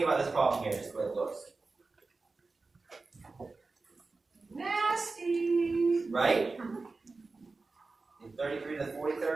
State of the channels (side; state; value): left; quieter; 3.8 dB